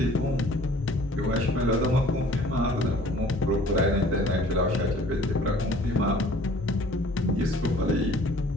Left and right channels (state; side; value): normal; both; correlation 0.52